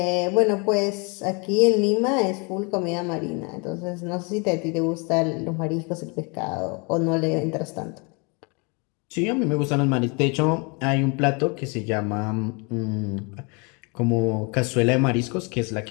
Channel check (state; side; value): quieter; right; 31.9 dB